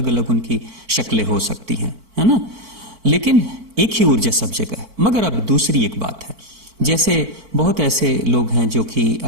अलग उनकी शक्लें हो सकती हैं, है ना, लेकिन एक ही ऊर्जा सब जगह है। मगर अब दूसरी एक बात है, जैसे बहुत ऐसे लोग हैं जो कि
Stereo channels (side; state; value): left; late; 4.5 ms